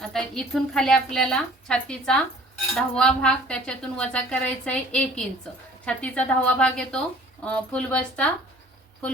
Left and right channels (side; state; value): both; normal; correlation 0.51